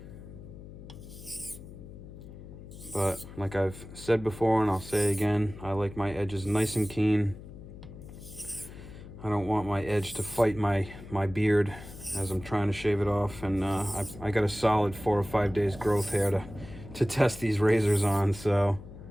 But like I've said before, and I'll say again, I like my edges nice and keen. I don't want my edge to fight my beard as I'm trying to shave it off. And I got a solid 4 or 5 days growth hair to test these razors on, so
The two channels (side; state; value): left; noise; hum, 15 dB below the sound